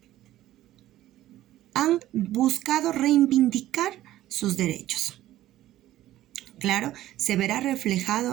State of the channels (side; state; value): left; quieter; 14.3 dB